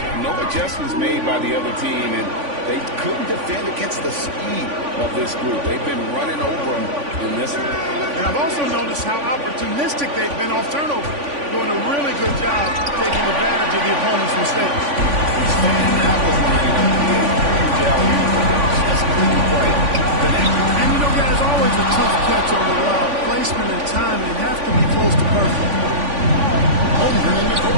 No adjustments made by the other team, and they couldn't defend against the speed of this group. They've been running over them in this one. And I've also noticed how opportunistic they've been off turnover, doing a really good job taking advantage of the opponent's mistakes. That was lining up to be a huge alley-oop for them. Just couldn't quite connect. And you know, guys, always a tough catch on the lob. Placement and timing have to be close to perfect.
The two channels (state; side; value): late; left; 3.5 ms